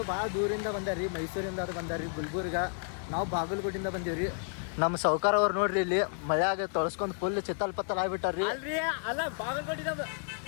ಭಾಳ ದೂರಿಂದ ಬಂದಾರ್ರಿ. ಮೈಸೂರಿಂದ ಅದು ಬಂದಾರ್ರಿ. ಗುಲ್ಬರ್ಗ. ನಾವು ಬಾಗಲಕೋಟೆಯಿಂದ ಬಂದೀವ್ರಿ. ನಮ್ಮ ಸೌಕಾರ ಅವ್ರು ನೋಡ್ರಿ ಇಲ್ಲಿ ಮಳೆಯಾಗ ತೊಳಸ್ಕೊಂಡು ಫುಲ್ ಚಿತ್ತಲ್ ಪತ್ತಲ್ ಆಗ್ಬಿಟ್ಟಾರ್ರಿ. ಅಲ್ರಿ ಅಲ್ಲ ಬಾಗಲಕೋಟೆಯಿಂದ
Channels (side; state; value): right; silent; 57 dB below the other